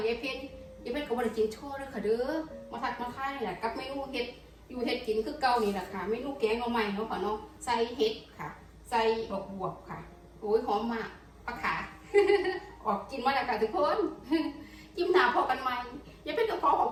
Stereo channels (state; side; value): identical; both; correlation 1.00